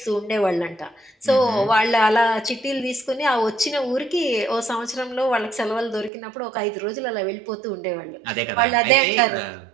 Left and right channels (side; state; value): left; drops out; at 6.1 s